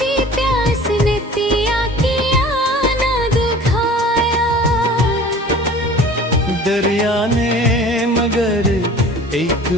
प्यास ने पिया किया न दुखा। दरिया ने मगर एक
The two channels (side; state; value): both; normal; correlation 0.44